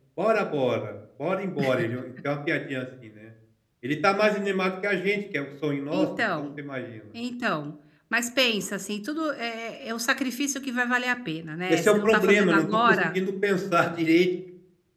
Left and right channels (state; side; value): identical; both; correlation 1.00